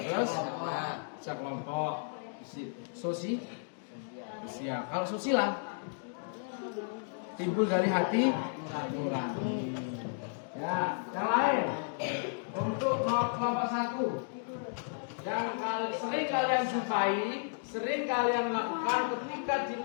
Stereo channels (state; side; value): silent; right; digital silence